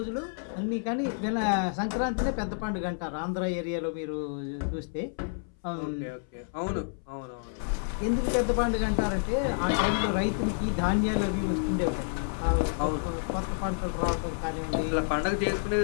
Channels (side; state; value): right; silent; 58 dB below the other